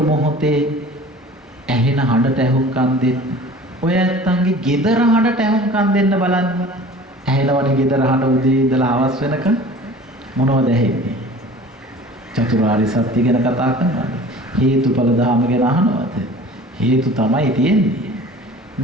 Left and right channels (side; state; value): both; normal; correlation 0.43